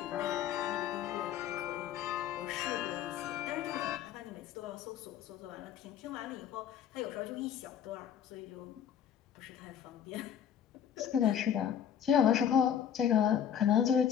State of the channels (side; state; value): right; quieter; 9.0 dB